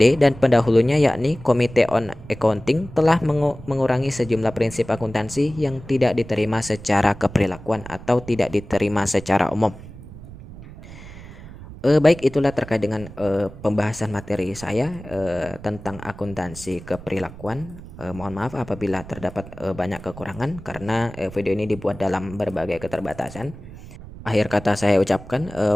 dan pendahulunya yakni Komite on Accounting telah mengurangi sejumlah prinsip akuntansi yang tidak diterima secara keperilakuan atau tidak diterima secara umum. Baik, itulah terkait dengan pembahasan materi saya tentang akuntansi keperilakuan. Mohon maaf apabila terdapat banyak kekurangan karena video ini dibuat dalam berbagai keterbatasan. Akhir kata saya ucapkan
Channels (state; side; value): noise; right; rumble, 16 dB below the sound